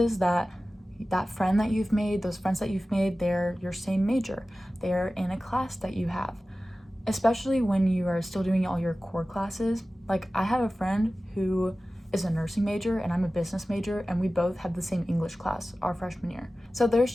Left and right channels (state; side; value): normal; both; correlation 0.96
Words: that that friend that you've made, those friends that you've made, they're your same major. They're in a class that you have. Especially when you are still doing all your core classes. Like I have a friend who is a nursing major and I'm a business major, and we both had the same English class our freshman year. So there's